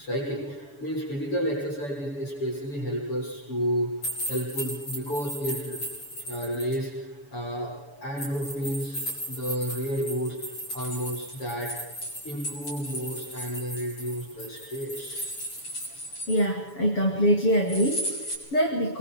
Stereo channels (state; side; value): late; right; 7.1 ms